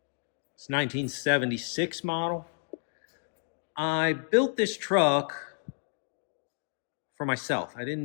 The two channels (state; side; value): silent; right; 57 dB below the other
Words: It's 1976 model. I built this truck for myself. I